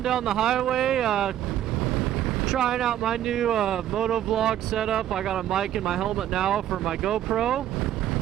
down the highway, trying out my new moto vlog setup. I got a mic in my helmet now for my GoPro.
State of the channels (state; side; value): quieter; left; 11.8 dB